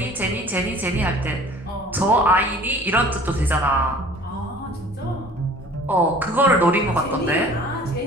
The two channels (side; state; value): both; normal; correlation 0.48